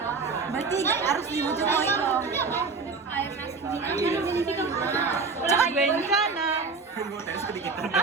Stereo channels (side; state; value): left; quieter; 4.5 dB